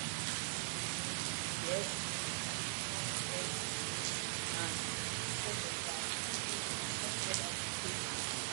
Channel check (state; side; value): silent; left; 50 dB below the other